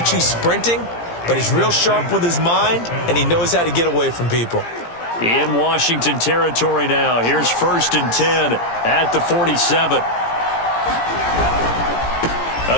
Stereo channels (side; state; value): right; late; 17 ms